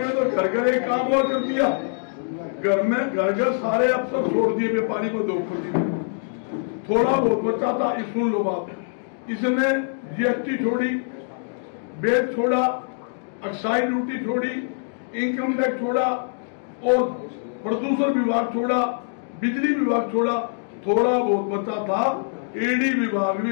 तो घर घर एक काम और कर दिया, घर में घर घर सारे अफसर छोड़ दिए, व्यापारी को 2 कर दिए, थोड़ा बहुत बचा था। सुन लो बात, इसने जीएसटी छोड़ी, बेट छोड़ा, एक्साइज ड्यूटी छोड़ी, इनकम टैक्स छोड़ा और प्रदूषण विभाग छोड़ा, बिजली विभाग छोड़ा, थोड़ा बहुत बचा था ईडी विभाग भी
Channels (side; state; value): right; silent; digital silence